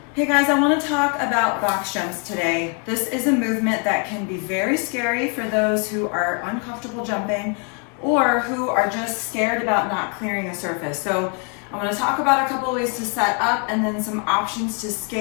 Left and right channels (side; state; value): right; quieter; 38.0 dB